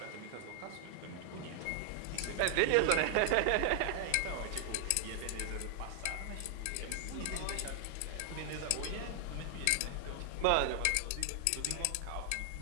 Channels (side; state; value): both; different; correlation 0.00